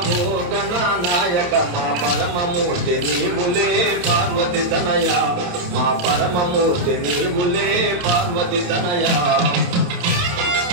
నాయక మా పరమమూర్తి నీవులే పార్వతి తనయ మా పరమమూర్తి నీవులే పార్వతి తనయ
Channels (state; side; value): late; left; 28 ms